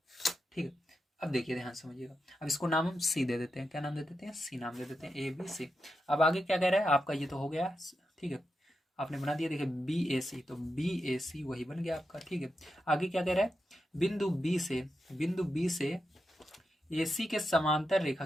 ठीक है। अब देखिए ध्यान से समझिएगा। अब इसको नाम हम C दे देते हैं, क्या नाम दे देते हैं, C नाम दे देते हैं, ABC। अब आगे क्या कह रहा है आपका, ये तो हो गया, ठीक है, आपने बना दिया। देखिए BAC, तो BAC वही बन गया आपका, ठीक है। आगे क्या कह रहा है, बिंदु B से AC के समांतर रेखा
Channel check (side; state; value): both; normal; correlation 0.87